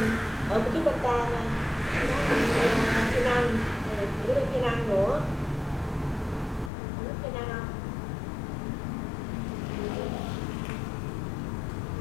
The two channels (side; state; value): right; drops out; at 6.7 s